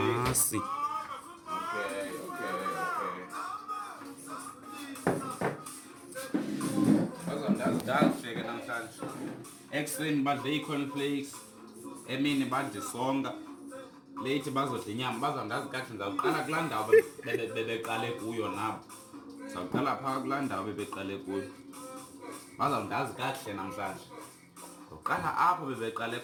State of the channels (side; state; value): both; identical; correlation 1.00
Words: Okay. Ndazifike namhlanje. Ekuseni badle ii-cornflakes, emini badle isonka, late bazodla inyama. Bazawundazi kakuhle ndizawuqala kulaa ndawo bebeqale kuyo nabo. Ndizawuqala phaa kulaa ndawo bebeqale kuyo. Bazawundazi kakuhle namhlanje. Ndizawuqala apho bebeqale